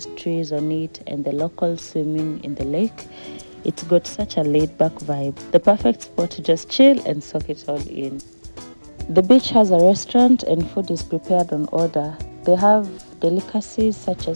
trees on it and the locals swimming in the lake. It's got such a laid-back vibe. The perfect spot to just chill and soak it all in. The beach has a restaurant and food is prepared on order. They have delicacies such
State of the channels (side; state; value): both; inverted; correlation -1.00